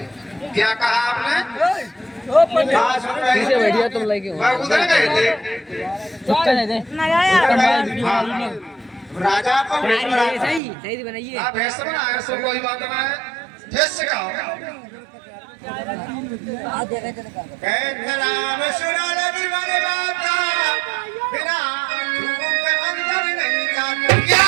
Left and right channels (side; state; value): left; drops out; at 10.6 s